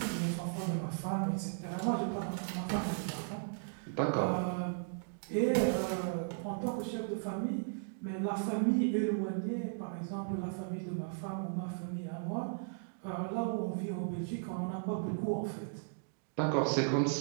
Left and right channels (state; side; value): silent; left; digital silence